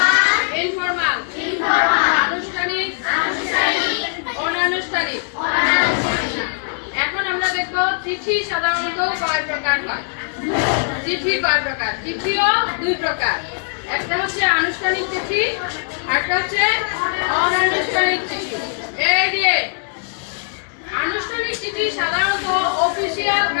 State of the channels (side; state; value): right; silent; digital silence